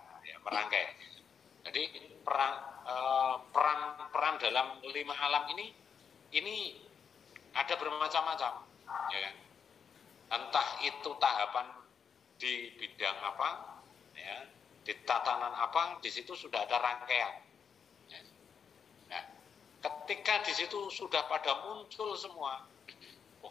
Jadi peran dalam 5 alam ini ada bermacam-macam, ya kan. Entah itu tahapan di bidang apa, ya, di tatanan apa, di situ sudah ada rangkaian. Ya. Nah, ketika di situ sudah pada muncul semua,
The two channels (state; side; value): quieter; right; 6.9 dB